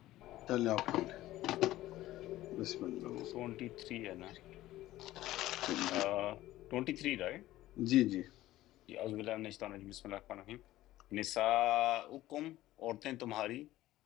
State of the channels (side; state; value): right; quieter; 15.6 dB